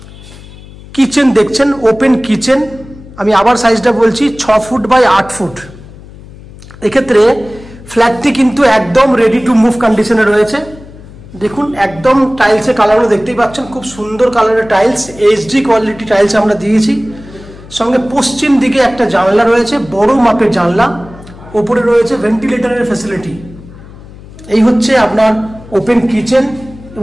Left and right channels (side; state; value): left; noise; hum, 19 dB below the sound